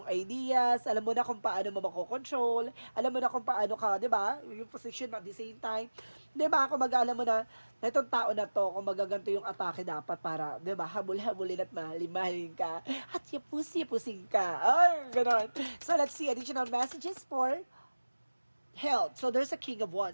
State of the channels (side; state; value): both; inverted; correlation -1.00